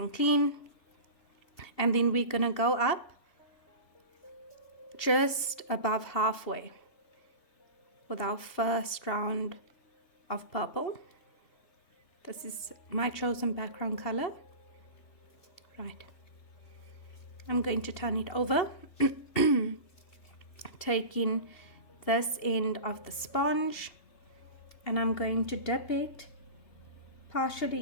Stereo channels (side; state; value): right; late; 2.7 ms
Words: clean, and then we're gonna go up just above halfway with our first round of purple. This is my chosen background color. Right, I'm going to turn it over, taking this end of the sponge, and I'm going to dip it